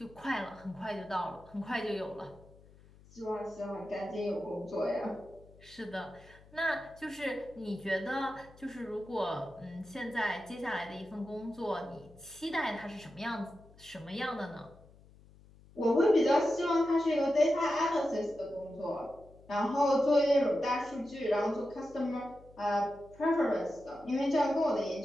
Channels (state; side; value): noise; left; hum, 24 dB below the sound